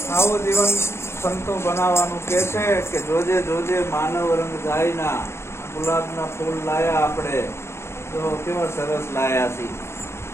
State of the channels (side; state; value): right; late; 0.13 ms